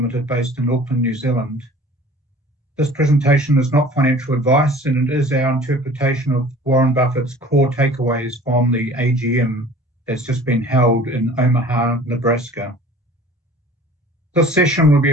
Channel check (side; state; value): both; normal; correlation 0.47